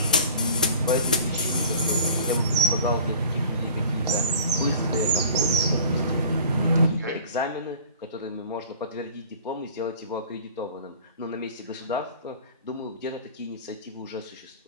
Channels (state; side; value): inverted; both; correlation -0.44